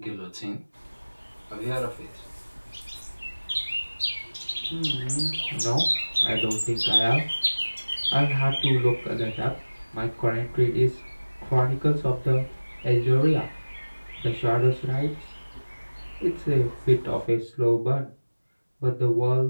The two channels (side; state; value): both; inverted; correlation -1.00